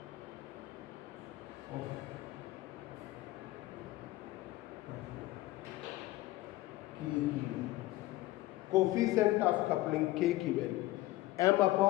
coefficient of coupling K की value M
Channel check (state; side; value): quieter; right; 17.7 dB